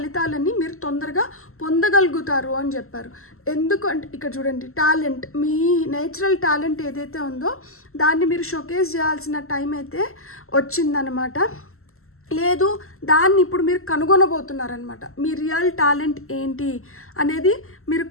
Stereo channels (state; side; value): late; right; 0.62 ms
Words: మీరు తొందరగా పొందగలుగుతారు అని చెప్పారు. ఎందుకు అంటే ఇక్కడ చూడండి, టాలెంట్, మీ నేచురల్ టాలెంట్ ఏదైతే ఉందో దాన్ని మీరు షోకేస్ చేయాల్సిన టైం అయితే వచ్చిందనమాట. లేదు దాన్ని ఇప్పుడు మీరు కనుగొనబోతున్నారనమాట. మీ రియల్ టాలెంట్ ఏంటి అనేది మీరు